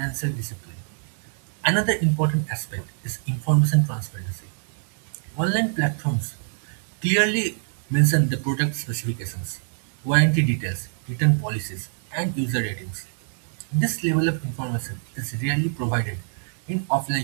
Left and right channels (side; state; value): left; silent; digital silence